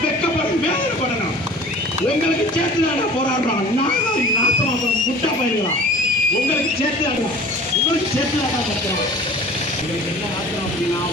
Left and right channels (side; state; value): both; normal; correlation 0.44